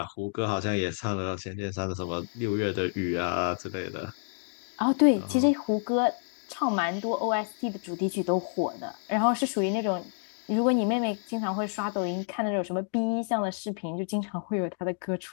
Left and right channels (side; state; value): right; silent; digital silence